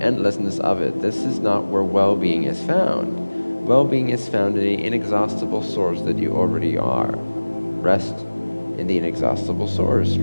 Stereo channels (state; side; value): inverted; both; correlation -1.00